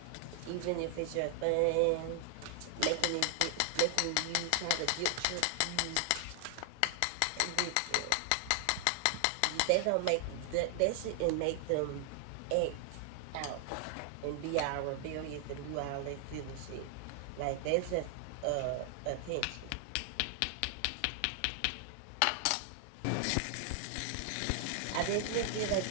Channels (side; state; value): both; different; correlation 0.00